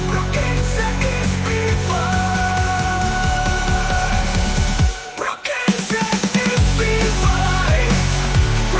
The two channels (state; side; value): identical; both; correlation 1.00